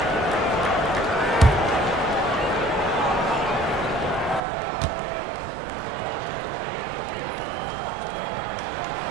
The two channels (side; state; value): left; drops out; at 4.4 s